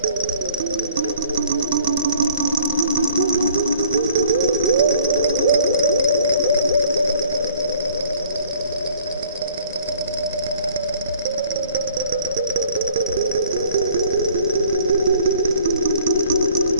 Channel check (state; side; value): inverted; both; correlation -0.56